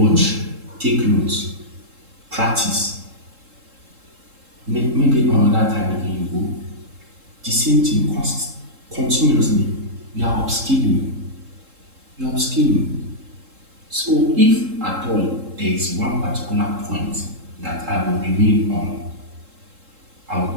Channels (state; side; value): late; left; 3.7 ms